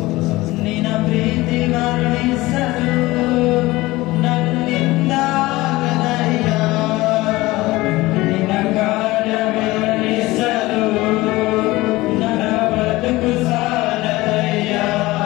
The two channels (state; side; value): quieter; right; 19.5 dB